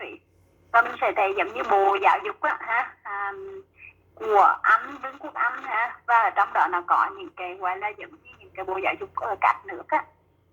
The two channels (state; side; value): identical; both; correlation 1.00